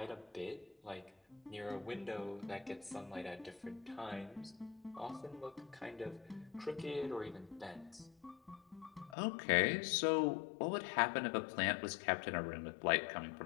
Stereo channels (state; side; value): drops out; right; at 9.2 s